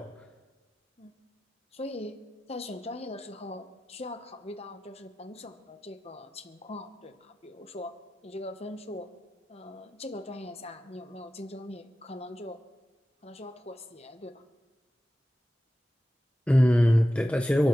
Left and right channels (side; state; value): both; normal; correlation 0.94